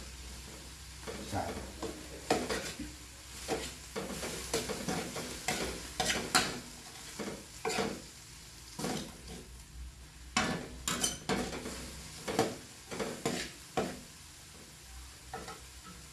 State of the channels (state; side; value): identical; both; correlation 1.00